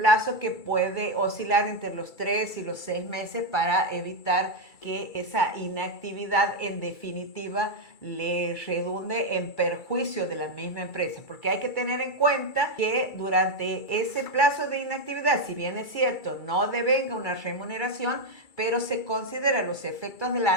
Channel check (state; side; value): late; right; 2.3 ms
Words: que puede oscilar entre los 3 y los 6 meses, para evitar que esa inactividad en definitiva le redunde en perjuicio de la misma empresa. Porque hay que tener en cuenta que durante ese plazo de inactividad, si bien es cierto, no devenga una remuneración, pero se considera los efectos de la